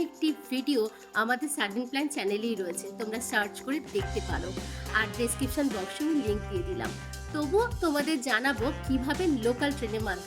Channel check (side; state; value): both; identical; correlation 1.00